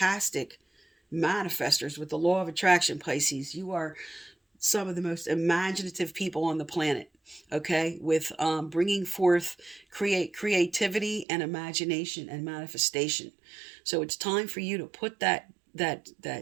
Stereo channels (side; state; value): left; drops out; at 11.2 s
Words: manifestors with the law of attraction, Pisces. You are some of the most imaginative people on the planet, okay, with bringing forth creativity and imagination and manifestation. So it's time for you to put that